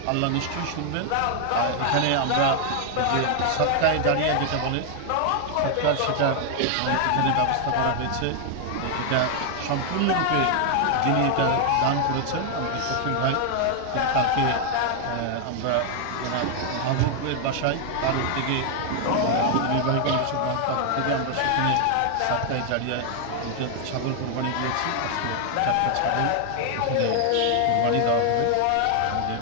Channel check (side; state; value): both; different; correlation 0.00